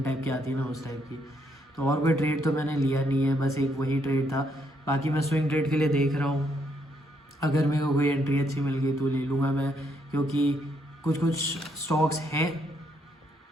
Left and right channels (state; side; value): normal; both; correlation 0.74